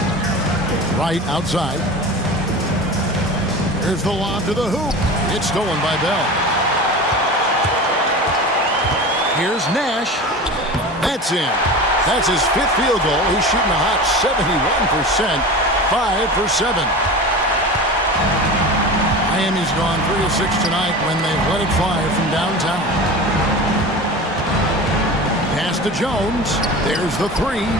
Right outside. Here's the lob to the hoop. It's stolen by Bell. Here's Nash. That's in. That's his 5th field goal. He's shooting a hot 71%. 5 for 7. Miami's gone 3 of 6 tonight when they've let it fly from downtown. Pass to Jones. There's the 3.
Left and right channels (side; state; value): both; normal; correlation 0.32